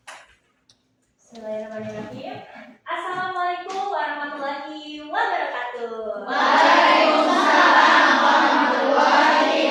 Bismillahirrahmanirrahim. Assalamualaikum warahmatullahi wabarakatuh. Waalaikumsalam warahmatullahi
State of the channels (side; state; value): both; identical; correlation 1.00